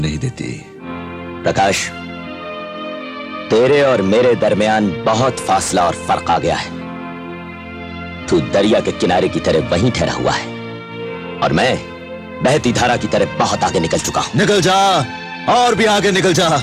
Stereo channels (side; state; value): both; identical; correlation 1.00